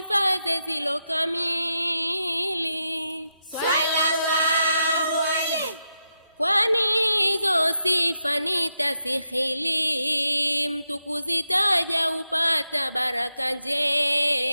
zilo kamili. Sallallahu alayhi Kwani hizo sifa nitasikhili, mtu kuzitaja upata baraka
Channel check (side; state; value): both; inverted; correlation -0.86